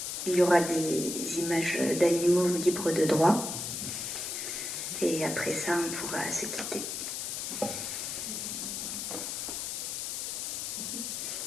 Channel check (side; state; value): left; noise; hiss, 4 dB below the sound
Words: Il y aura des images d'animaux libres de droit. Et après ça, on pourra se quitter.